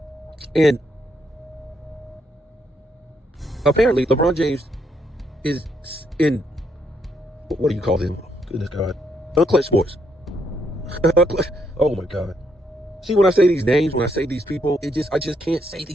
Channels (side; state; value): both; normal; correlation 0.75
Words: And apparently LeBron James is in, what do you call them? Goodness God. Unclutched Sports. Oh my God. See, when I say these names, when I say these people, I just can't say